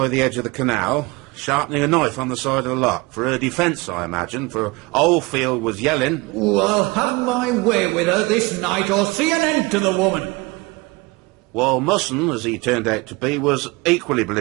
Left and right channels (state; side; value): quieter; left; 24.2 dB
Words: the edge of the canal, sharpening a knife on the side of the lock. For her defence, I imagine, for Oldfield was yelling. Oh, I'll have my way with her this night or see an end to the woman. While Musson, as he turned out to be, was equally